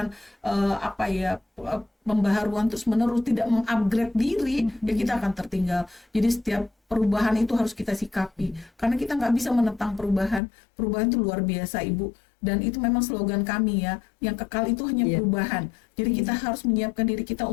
pembaharuan terus-menerus, tidak mengupgrade diri, ya kita akan tertinggal. Jadi setiap perubahan itu harus kita sikapi, karena kita nggak bisa menentang perubahan. Perubahan itu luar biasa Ibu, dan itu memang slogan kami ya, yang kekal itu hanya perubahan. Jadi kita harus menyiapkan diri kita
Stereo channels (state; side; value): drops out; right; at 10.4 s